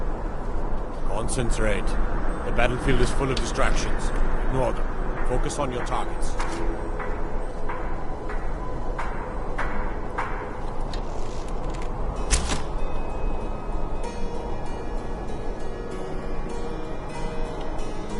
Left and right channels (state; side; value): identical; both; correlation 1.00